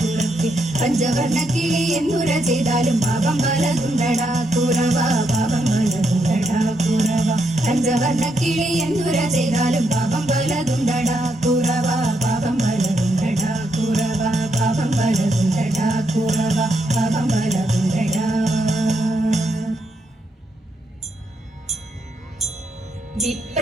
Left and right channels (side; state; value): both; normal; correlation 0.79